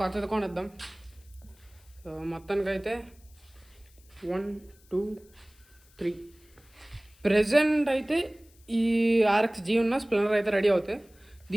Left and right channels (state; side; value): noise; left; hiss, 29 dB below the sound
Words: కొనిద్దాం. సో మొత్తానికైతే 1 2 3 ప్రెజెంట్ అయితే ఈ RX-G ఉన్న స్ప్లెండర్ అయితే రెడీ అవుతాయి.